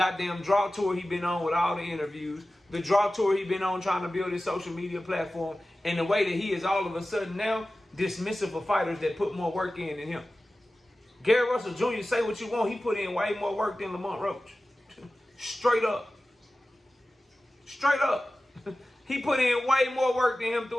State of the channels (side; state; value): both; normal; correlation 0.95